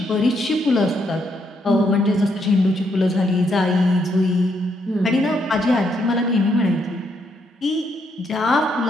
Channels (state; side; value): normal; both; correlation 0.76